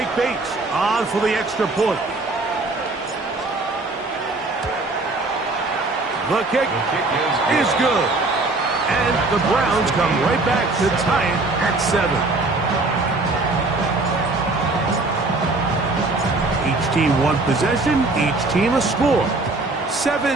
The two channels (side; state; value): left; quieter; 3.2 dB